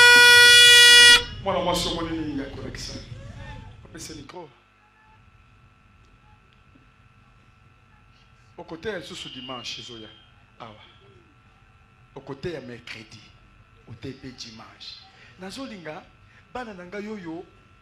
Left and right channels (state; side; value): identical; both; correlation 1.00